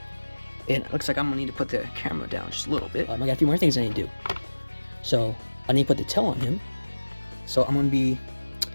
And it looks like I'm gonna need to put the camera down just a little bit. I got a few more things I need to do. So I need to put the tail on him. So I'm gonna be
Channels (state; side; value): inverted; both; correlation -1.00